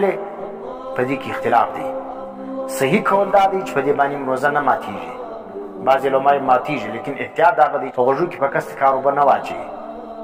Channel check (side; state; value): both; identical; correlation 1.00